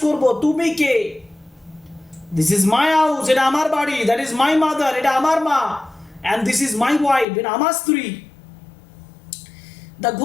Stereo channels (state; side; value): drops out; right; at 7.2 s